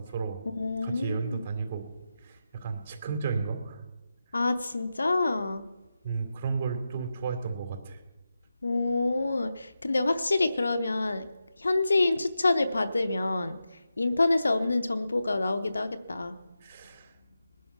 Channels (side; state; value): both; inverted; correlation -0.89